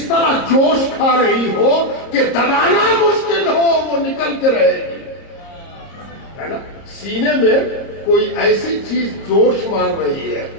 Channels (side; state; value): right; late; 30 ms